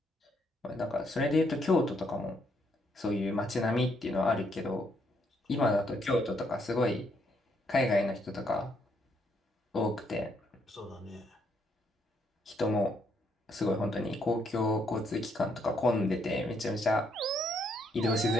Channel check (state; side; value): normal; both; correlation 0.73